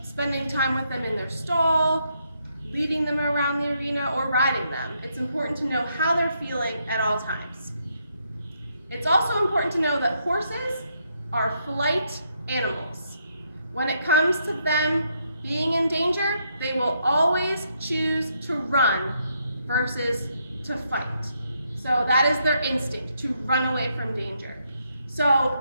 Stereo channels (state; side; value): inverted; both; correlation -0.76